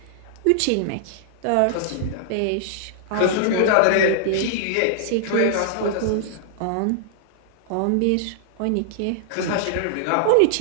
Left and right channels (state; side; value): different; both; correlation -0.01